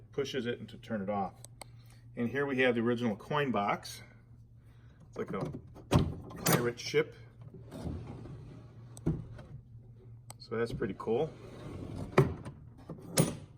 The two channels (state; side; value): identical; both; correlation 1.00